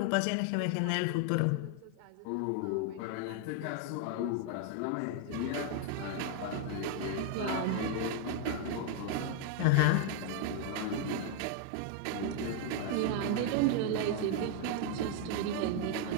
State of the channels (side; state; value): both; different; correlation 0.00